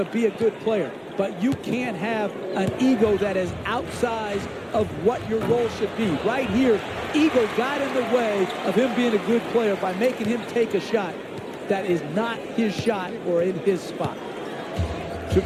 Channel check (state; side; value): identical; both; correlation 1.00